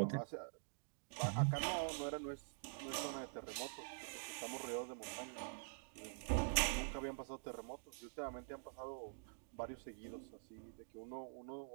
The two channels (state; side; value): silent; left; digital silence